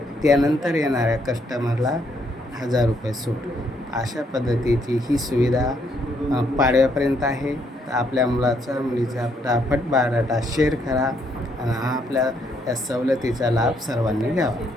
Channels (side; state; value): both; normal; correlation 0.72